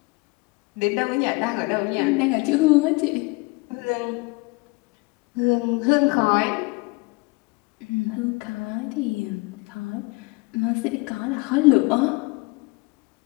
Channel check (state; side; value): quieter; right; 25.8 dB